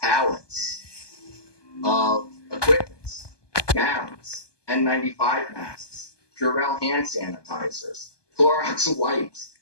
pallets of equipment, gowns, N95 masks, Purell hand sanitizers, Clorox wipes.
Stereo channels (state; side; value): late; right; 1.2 ms